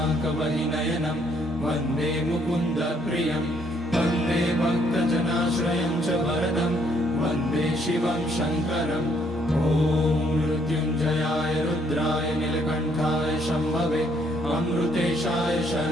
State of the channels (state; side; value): normal; both; correlation 0.68